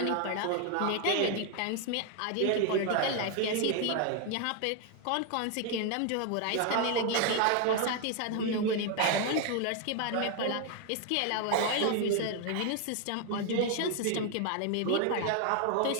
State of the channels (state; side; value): different; both; correlation 0.01